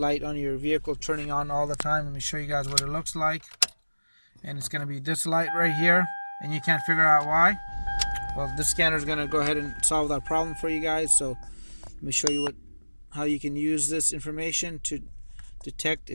on your vehicle turning on all the time. Let me show you guys what it looks like. And it's going to be this light right here, and you can't figure out why. Well, this scanner is going to go ahead and solve that problem for you guys. So let me show you how you can use this information to detect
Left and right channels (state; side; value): inverted; both; correlation -1.00